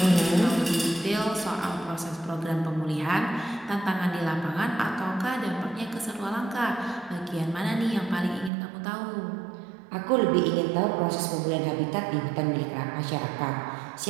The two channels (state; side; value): drops out; left; at 8.5 s